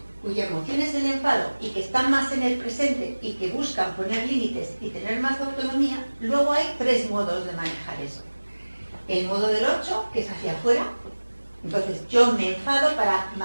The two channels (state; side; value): inverted; both; correlation -1.00